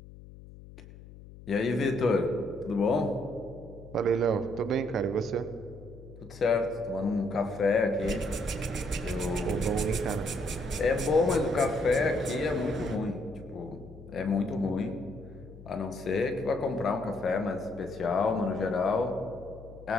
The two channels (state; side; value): noise; left; hum, 17 dB below the sound